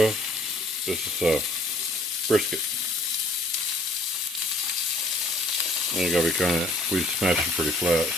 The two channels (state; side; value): normal; both; correlation 0.58